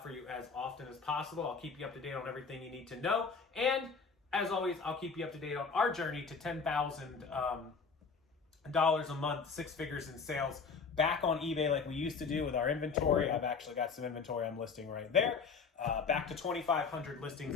for you as often as possible. I'll keep you up to date on everything you need to know. And as always, I'll keep you up to date on our journey to $10,000 a month, 6 figures in sales, back on eBay like we used to do with our inventory. I've actually got some inventory I'm listing right there. Back to 2,500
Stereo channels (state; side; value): quieter; right; 5.2 dB